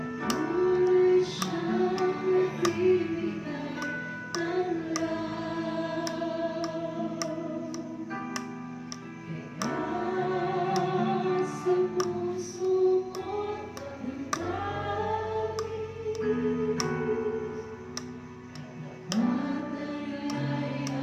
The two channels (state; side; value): identical; both; correlation 1.00